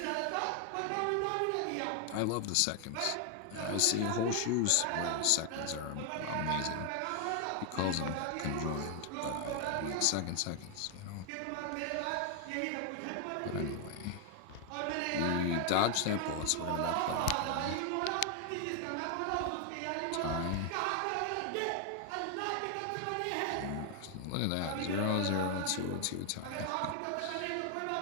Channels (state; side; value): different; both; correlation 0.00